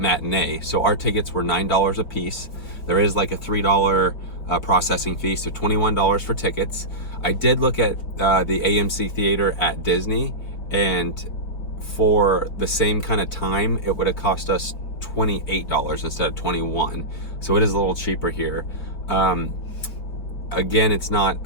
So our tickets were $9 a piece. There is like a $3 processing fee, so $21 for tickets. I did look at the AMC theater at Disney, and for the same kind of time, it would have cost us $28 instead of $21. So it is a little cheaper here. Again, it's not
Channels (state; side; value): late; right; 4.8 ms